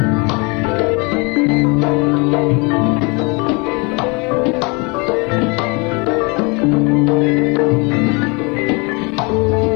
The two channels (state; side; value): quieter; right; 29.7 dB